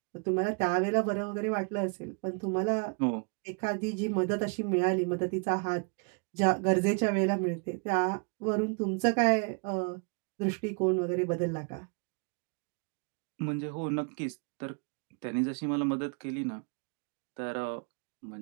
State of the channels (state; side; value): quieter; left; 36.7 dB